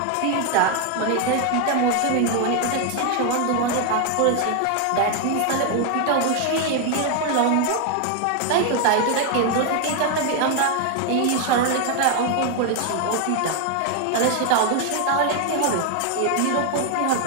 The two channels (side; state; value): both; different; correlation 0.01